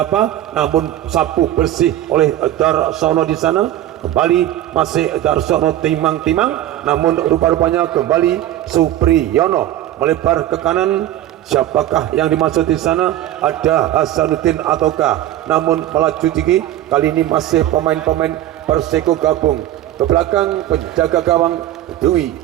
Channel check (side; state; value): left; quieter; 13.2 dB